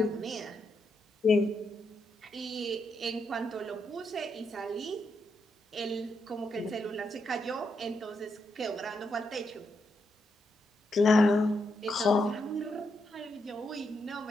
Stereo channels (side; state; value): both; normal; correlation 0.81